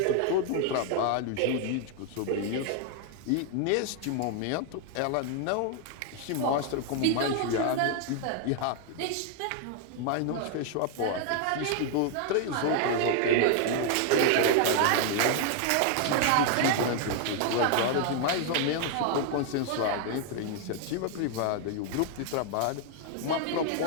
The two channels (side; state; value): both; different; correlation 0.00